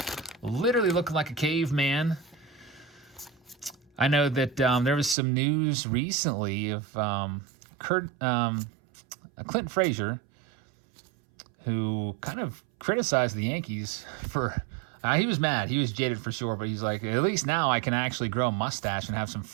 Literally looking like a caveman. I know that there was some news recently of Clinton Frazier, who kind of criticized the Yankees for... he was mad. He was jaded for sure, but he's like, at least now I can actually grow a mustache and have some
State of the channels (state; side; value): drops out; left; at 5.2 s